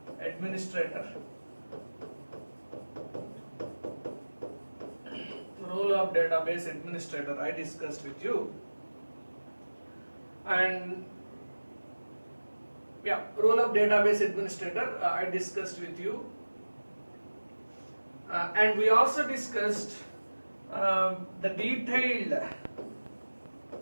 administrator. Role of database administrator I discussed with you, and role of database administrator I discussed with you, and we also discussed the detailed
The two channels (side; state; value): both; inverted; correlation -1.00